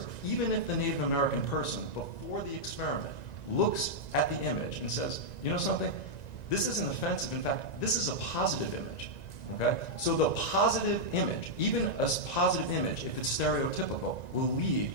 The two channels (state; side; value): late; right; 1.9 ms